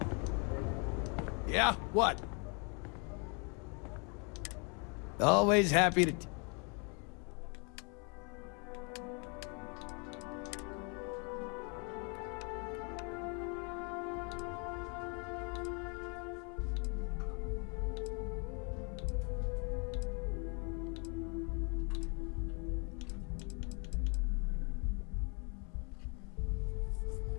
Yeah, what? Always happy to...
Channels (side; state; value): right; quieter; 34.3 dB